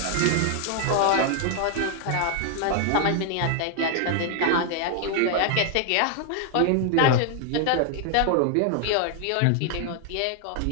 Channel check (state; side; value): different; both; correlation 0.00